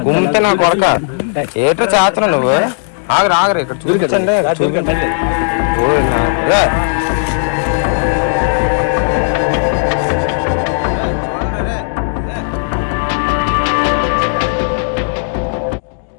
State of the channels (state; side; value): silent; right; digital silence